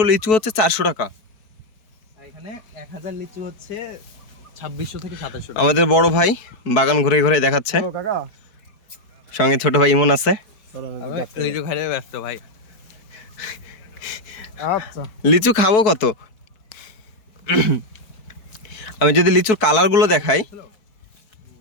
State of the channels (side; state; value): right; late; 4.7 ms